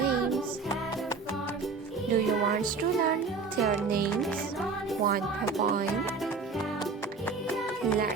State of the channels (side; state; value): left; quieter; 4.6 dB